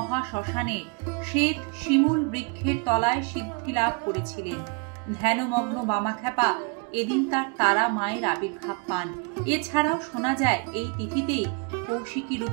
শ্বেত শিমুল বৃক্ষের তলায় সিদ্ধি লাভ করেছিলেন। ধ্যানমগ্ন বামাখ্যাপা এদিন তার তারা মায়ের আবির্ভাব পান। এছাড়াও শোনা যায় এই তিথিতেই কৌশিকী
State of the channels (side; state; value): left; quieter; 31.7 dB